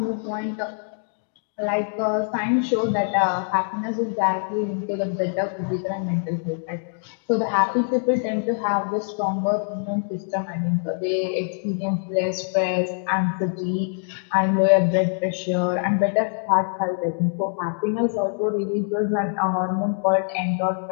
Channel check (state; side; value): silent; right; digital silence